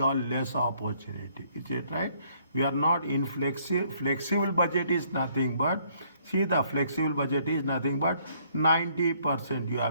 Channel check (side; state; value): both; inverted; correlation -0.65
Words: or less opportunity. Is it right? We are not in flexible budget is nothing but, see, the flexible budget is nothing but 90% you